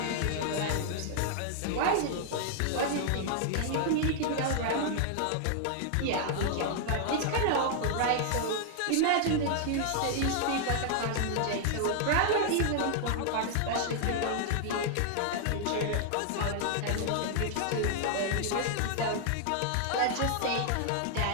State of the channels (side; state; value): both; different; correlation 0.00